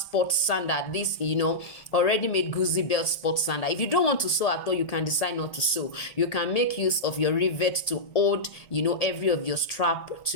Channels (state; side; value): late; right; 1.8 ms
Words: sandal, this already made Gucci belt sport sandal, if you don't want to sew at all, you can decide not to sew. You can make use of your rivet to hold every of your strap